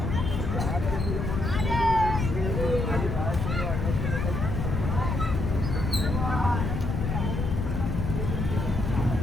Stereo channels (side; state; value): left; noise; rumble, 1 dB below the sound